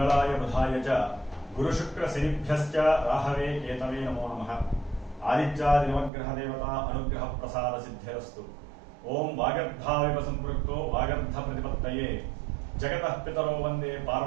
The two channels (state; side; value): drops out; left; at 6.1 s